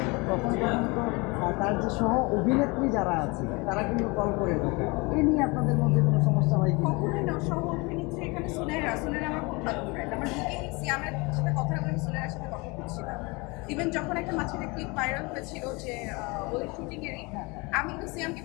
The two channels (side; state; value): right; quieter; 26.8 dB